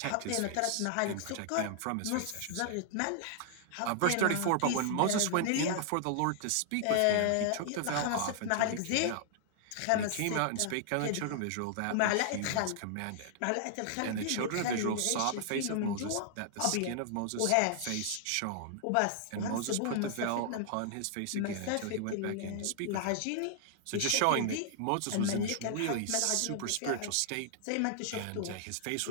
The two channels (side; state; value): both; different; correlation -0.01